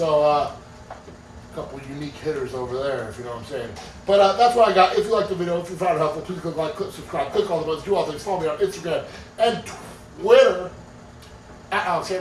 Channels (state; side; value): identical; both; correlation 1.00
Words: a couple unique hitters over there, if you know what I'm saying. But that's what I got. If you liked the video, if you found it helpful, please click like, click subscribe, click all the buttons, do all things. Follow me on Instagram and Twitter at Alex